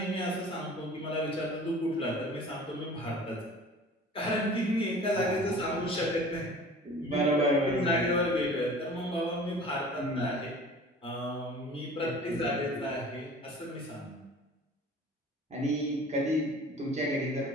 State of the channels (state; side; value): normal; both; correlation 0.44